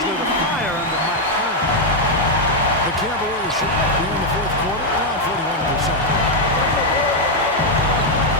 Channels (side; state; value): both; normal; correlation 0.00